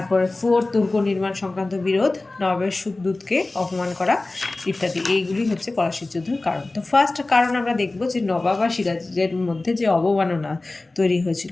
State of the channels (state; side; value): quieter; right; 3.1 dB